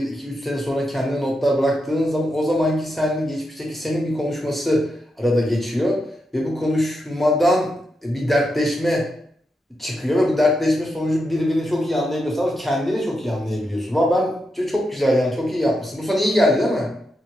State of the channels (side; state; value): both; normal; correlation 0.85